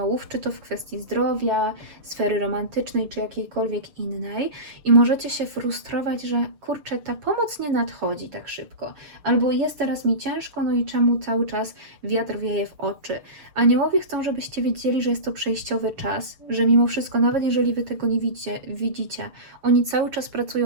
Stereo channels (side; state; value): left; late; 6.7 ms